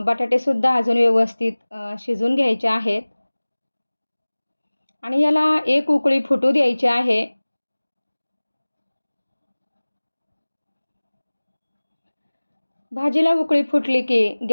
बटाटेसुद्धा अजून व्यवस्थित शिजून घ्यायचे आहेत आणि याला 1 उकळी फुटू द्यायची आहे. भाजीला उकळी फुटली की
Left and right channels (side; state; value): both; inverted; correlation -1.00